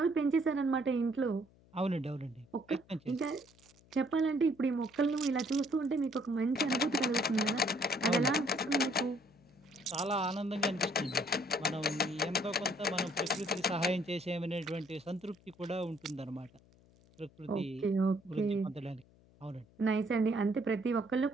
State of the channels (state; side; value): noise; left; hum, 28 dB below the sound